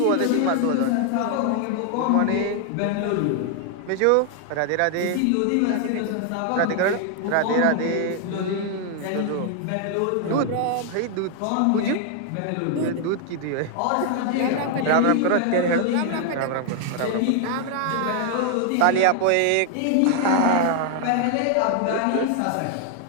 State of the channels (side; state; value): both; different; correlation 0.00